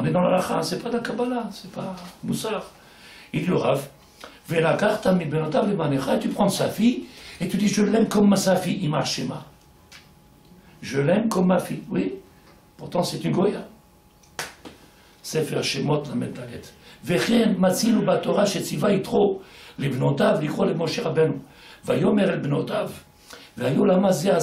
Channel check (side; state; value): both; identical; correlation 1.00